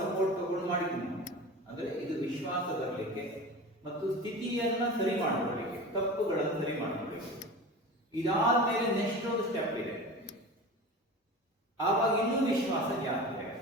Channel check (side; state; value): both; normal; correlation 0.32